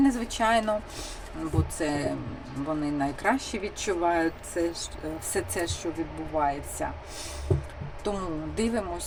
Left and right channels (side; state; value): both; identical; correlation 1.00